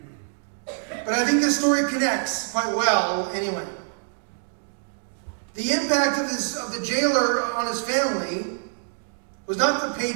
But I think this story connects quite well anyway. The impact of the jailer on his family was not the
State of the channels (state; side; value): silent; left; digital silence